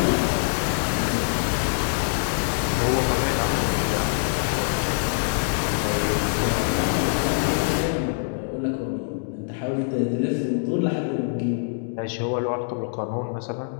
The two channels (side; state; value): right; silent; 62 dB below the other